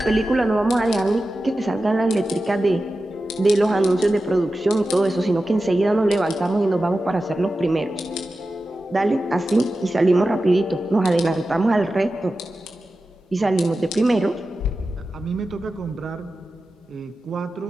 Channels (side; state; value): both; normal; correlation 0.93